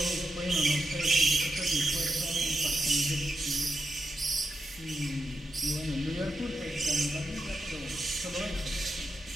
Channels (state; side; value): normal; both; correlation 0.85